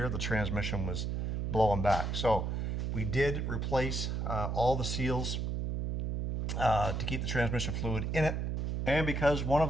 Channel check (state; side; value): noise; right; hum, 1 dB below the sound